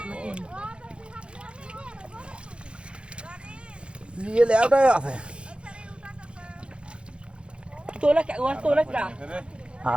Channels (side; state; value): left; late; 0.057 ms